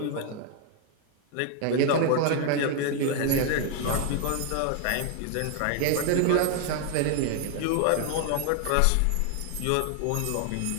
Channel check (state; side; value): different; both; correlation 0.00